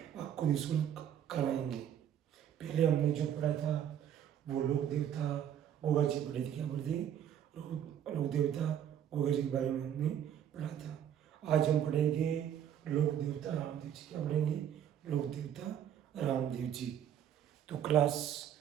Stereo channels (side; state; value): left; quieter; 9.7 dB